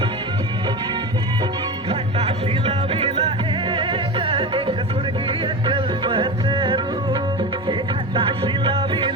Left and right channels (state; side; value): normal; both; correlation 0.25